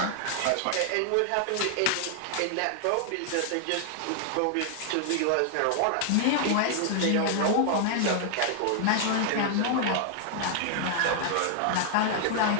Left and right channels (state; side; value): different; both; correlation 0.00